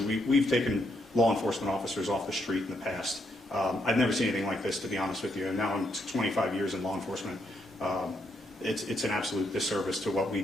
we've taken law enforcement officers off the street in the past. I've never seen anything like this, to be honest with you. And now I'm 25 years in law enforcement. It's an absolute disservice to what we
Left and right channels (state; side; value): normal; both; correlation 0.77